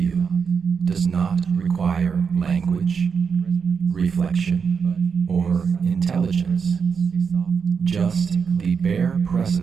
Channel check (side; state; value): left; quieter; 6.1 dB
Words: does not require language, reflection, or intelligence, just the bare